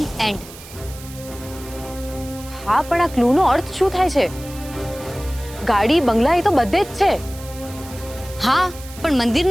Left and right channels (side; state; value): right; noise; hiss, 17 dB below the sound